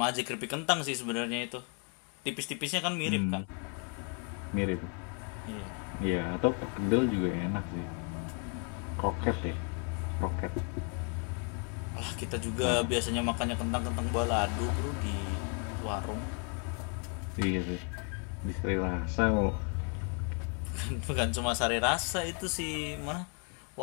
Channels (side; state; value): right; quieter; 39.8 dB